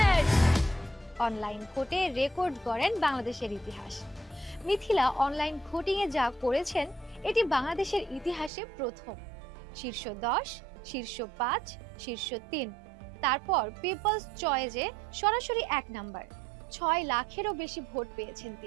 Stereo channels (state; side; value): drops out; left; at 8.5 s